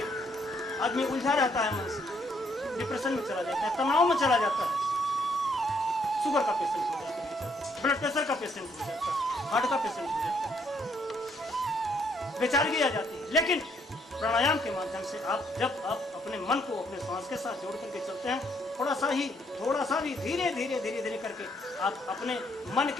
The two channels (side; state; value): both; normal; correlation 0.70